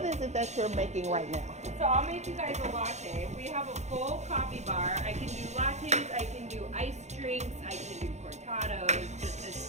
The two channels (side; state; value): left; late; 0.33 ms